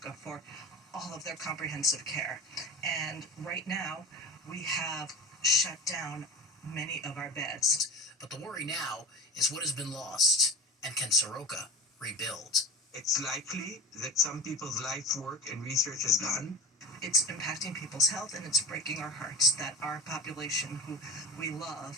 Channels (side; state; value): both; normal; correlation 0.31